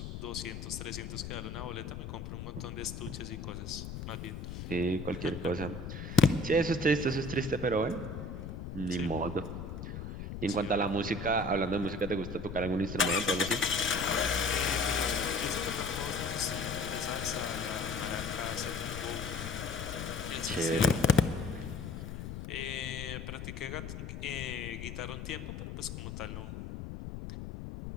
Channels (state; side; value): noise; left; rumble, 7 dB below the sound